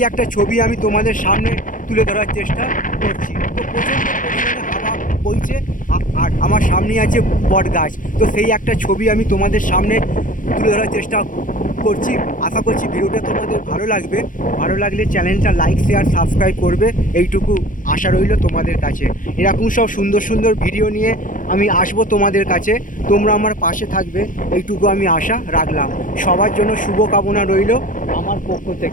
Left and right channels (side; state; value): right; late; 0.39 ms